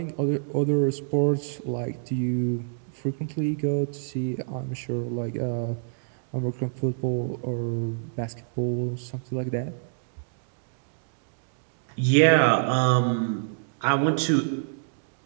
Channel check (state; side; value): silent; left; digital silence